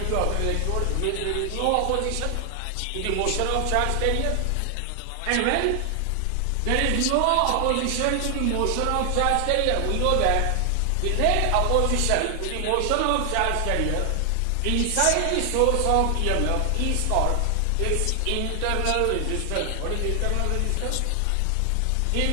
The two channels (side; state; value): both; different; correlation 0.00